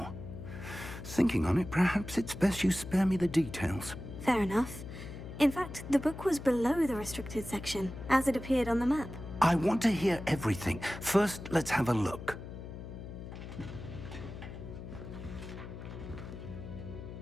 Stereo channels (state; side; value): noise; left; hum, 11 dB below the sound